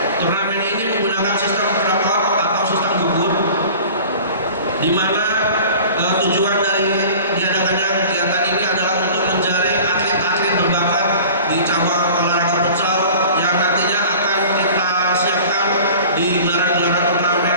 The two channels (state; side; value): inverted; both; correlation -0.42